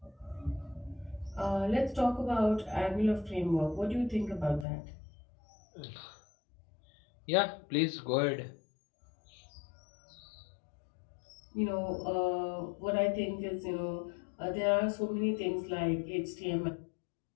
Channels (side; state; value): right; drops out; at 4.7 s